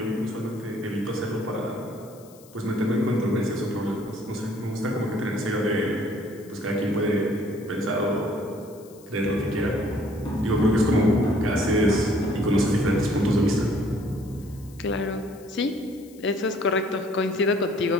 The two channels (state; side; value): noise; left; hiss, 25 dB below the sound